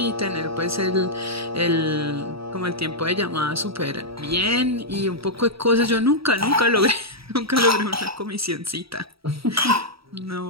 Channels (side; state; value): left; late; 0.76 ms